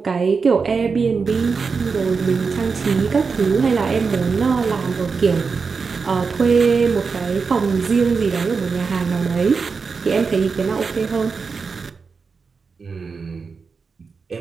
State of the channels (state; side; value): quieter; left; 5.0 dB